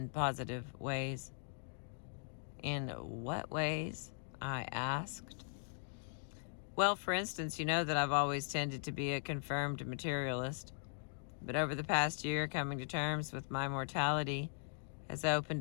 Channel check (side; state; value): right; silent; digital silence